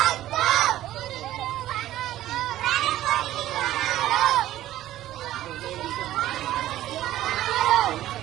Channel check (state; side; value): quieter; left; 14.0 dB